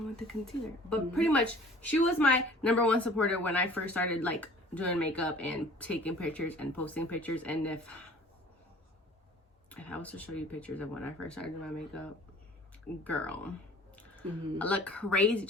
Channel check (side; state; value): both; normal; correlation 0.49